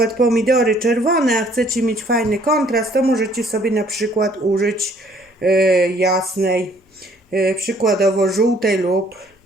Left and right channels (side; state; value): both; normal; correlation 0.61